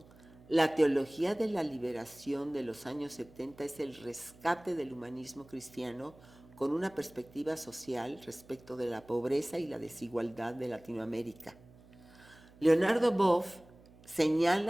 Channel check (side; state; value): right; noise; hum, 24 dB below the sound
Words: la teología de la liberación de los años 70 es el rescate del humanismo cristiano con una perspectiva social respecto de la pobreza y la desigualdad de Latinoamérica. Leonardo Boff